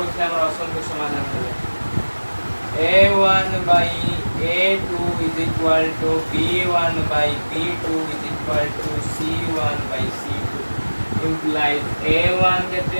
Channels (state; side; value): inverted; both; correlation -1.00